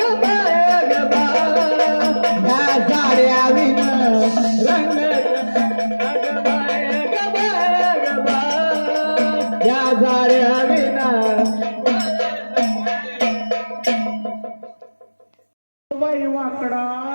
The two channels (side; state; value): both; inverted; correlation -1.00